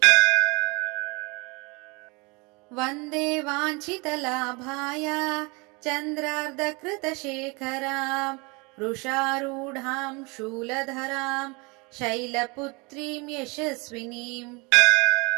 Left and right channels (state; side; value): quieter; left; 28.4 dB